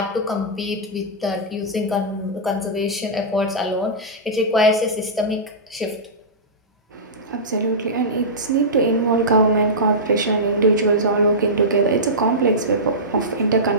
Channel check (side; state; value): both; normal; correlation -0.15